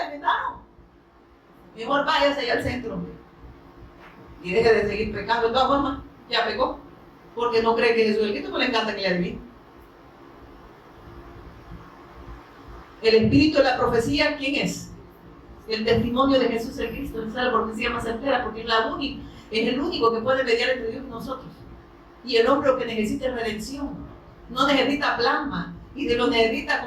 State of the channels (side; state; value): both; identical; correlation 1.00